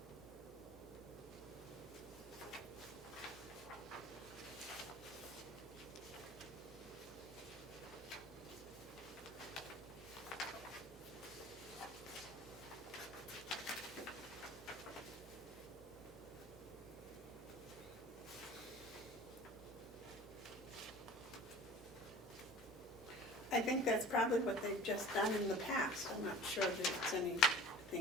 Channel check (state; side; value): normal; both; correlation 0.42